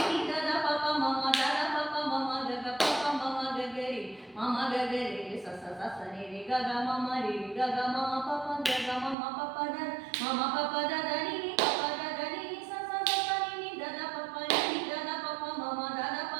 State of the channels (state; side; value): drops out; left; at 9.2 s